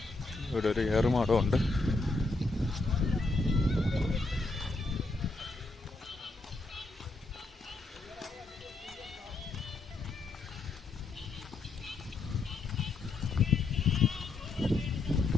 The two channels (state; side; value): quieter; right; 3.5 dB